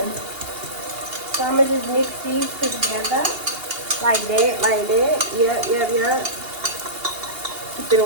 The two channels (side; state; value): left; late; 2.8 ms